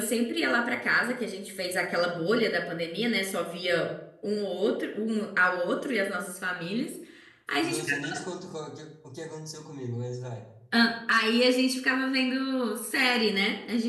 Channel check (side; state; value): both; identical; correlation 1.00